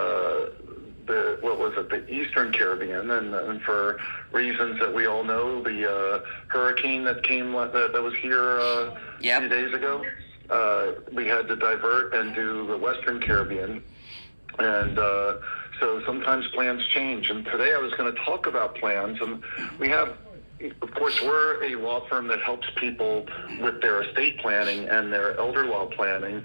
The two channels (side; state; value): both; inverted; correlation -1.00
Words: the Eastern Caribbean, and for reasons that we all know, the hurricane that came that was here a few days ago, we had to divert and do the Western Caribbean, and so sometimes plans change. And today I was going to talk about plans, and we have. Of course, we're a law firm that helps people with their estate planning and their elder law